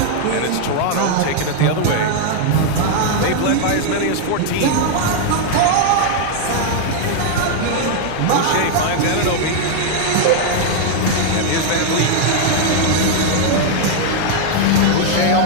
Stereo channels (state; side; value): different; both; correlation 0.00